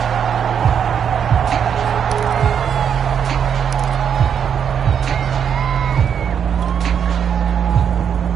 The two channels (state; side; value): quieter; left; 7.9 dB